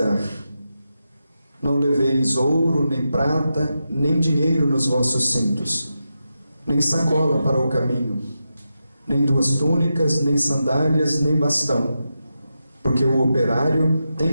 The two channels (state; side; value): inverted; both; correlation -0.89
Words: Não leveis ouro, nem prata, nem dinheiro nos vossos cintos, nem sacola para o caminho, nem duas túnicas, nem sandálias, nem bastão, porque o operário tem